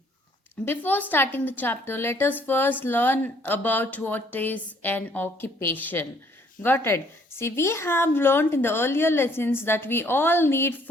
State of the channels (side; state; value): both; normal; correlation 0.63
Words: Before starting the chapter, let us first learn about what is an occupation. Got it? See, we have learned in the earlier lessons that we all need